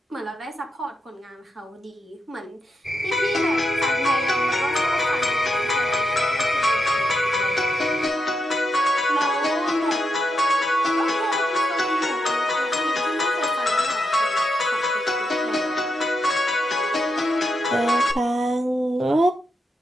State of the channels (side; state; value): both; normal; correlation 0.84